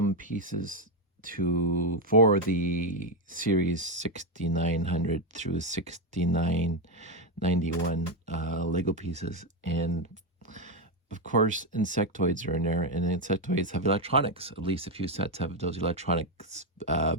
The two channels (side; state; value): both; normal; correlation 0.05